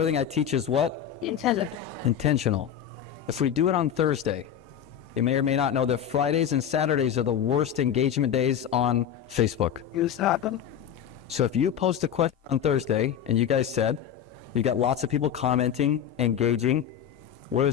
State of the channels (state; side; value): quieter; right; 9.1 dB